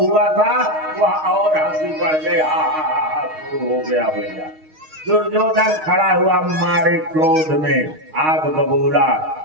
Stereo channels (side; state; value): left; late; 6.4 ms